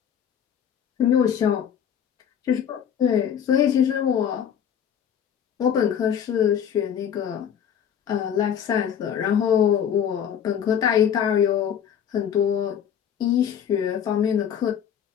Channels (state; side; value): quieter; right; 8.7 dB